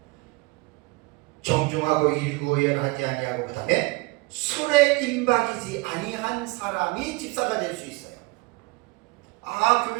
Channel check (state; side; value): quieter; left; 24.9 dB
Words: 정중하고 일구의연하지 아니하고, 그 다음에 술에 임박이지 아니한 사람이 집사가 될 수 있어요.